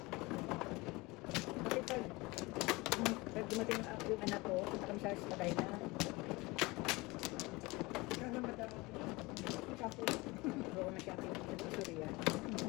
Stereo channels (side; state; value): right; quieter; 23.3 dB